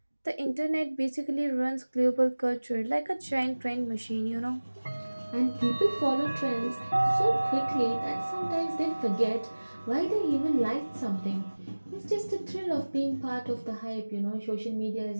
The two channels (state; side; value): inverted; both; correlation -1.00